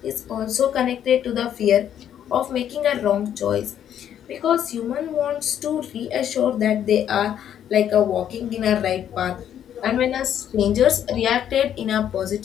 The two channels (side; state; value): right; quieter; 10.0 dB